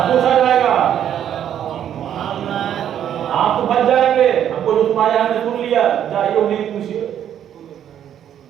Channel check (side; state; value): left; quieter; 10.0 dB